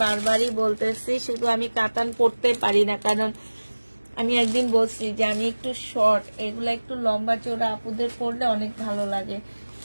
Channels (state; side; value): inverted; both; correlation -1.00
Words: বারবারই বলতেছি। শুধু আমি কাতান পরতে পারি না, কারণ আমি একদিন বলছি যে আমি একটু শর্ট, এগুলা একটু লম্বা চওড়া আপুদের পরলে অনেক ভালো লাগে।